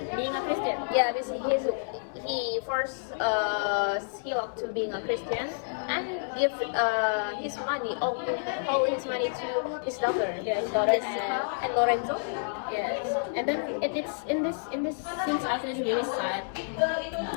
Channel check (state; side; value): silent; right; digital silence